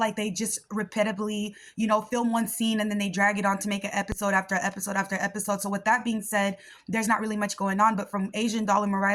they just repetitively, film one scene and then they drag it on to make an episode after episode after episode. So with that being said, there's not really much going on. But from Asian Doll and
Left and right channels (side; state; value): both; identical; correlation 1.00